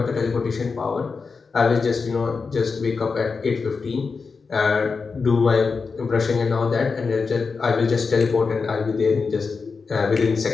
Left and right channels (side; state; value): right; quieter; 4.8 dB